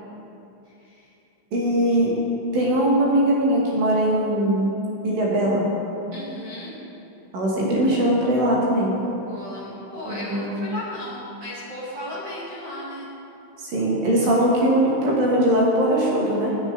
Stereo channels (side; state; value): left; late; 16 ms